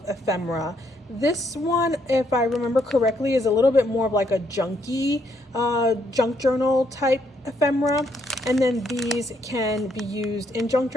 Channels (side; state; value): both; normal; correlation 0.73